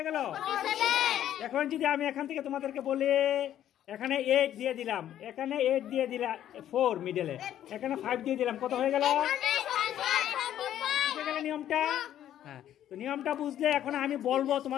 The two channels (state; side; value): quieter; right; 11.4 dB